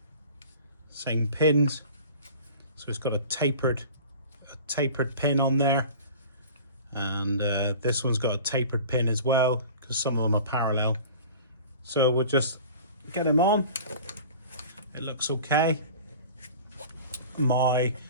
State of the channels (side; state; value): both; inverted; correlation -0.42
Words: pins. So it's got a tapered pin on there, and this one's got a tapered pin as well because some of them are parallel. So we'll just get him on. It looks okay. My